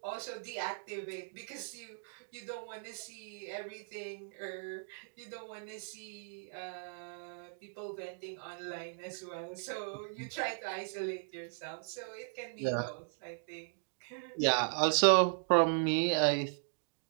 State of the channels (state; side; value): silent; left; digital silence